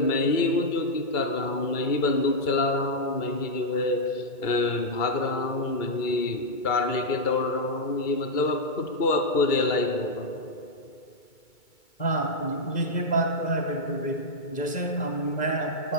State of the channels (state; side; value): late; right; 2.2 ms